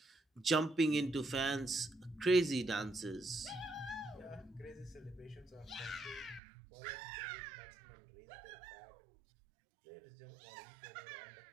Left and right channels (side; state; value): left; drops out; at 6.4 s